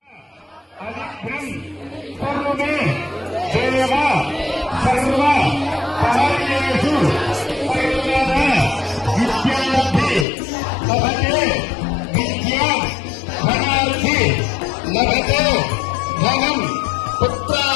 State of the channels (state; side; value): drops out; right; at 10.2 s